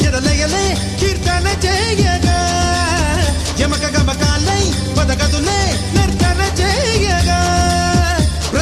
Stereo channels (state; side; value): identical; both; correlation 1.00